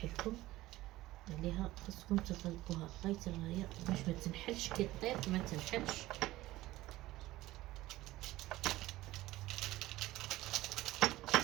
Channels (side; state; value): left; quieter; 17.1 dB